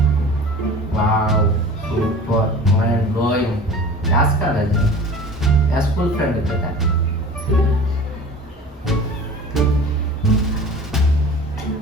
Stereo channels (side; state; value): both; normal; correlation 0.40